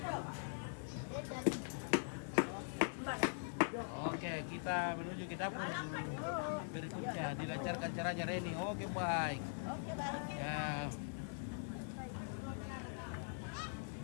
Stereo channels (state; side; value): silent; right; digital silence